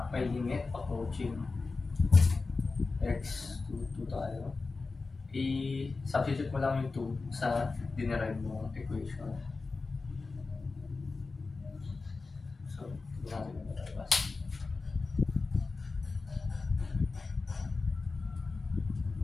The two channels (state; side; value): quieter; right; 4.0 dB